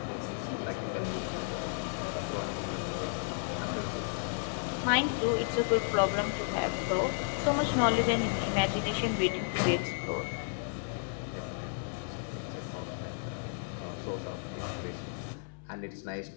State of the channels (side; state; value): right; silent; 56 dB below the other